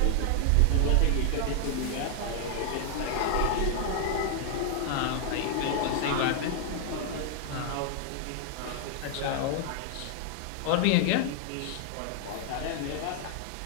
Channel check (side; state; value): both; different; correlation 0.00